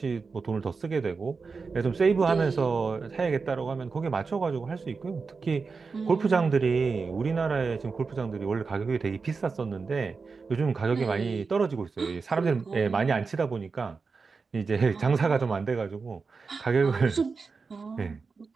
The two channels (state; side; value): quieter; left; 4.7 dB